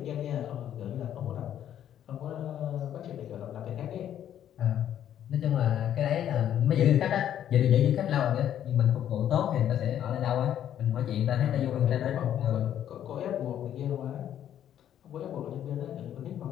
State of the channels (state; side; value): quieter; right; 10.5 dB